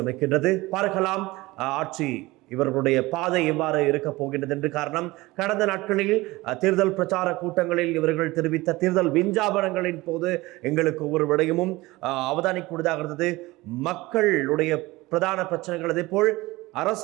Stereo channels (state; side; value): quieter; left; 20.4 dB